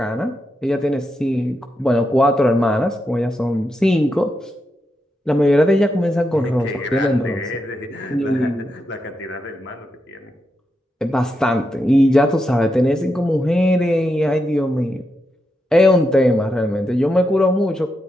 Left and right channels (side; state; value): both; normal; correlation 0.85